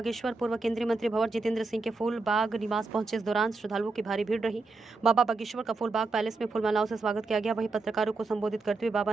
पूर्व केंद्रीय मंत्री भंवर जितेंद्र सिंह के फूल बाग निवास पहुंचे। इस दौरान श्रद्धालुओं की भारी भीड़ रही। बाबा बागेश्वर का फूल बाग पैलेस में फूलमालाओं से स्वागत किया गया। वहीं पत्रकारों को संबोधित करते हुए बाबा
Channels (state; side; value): quieter; left; 3.7 dB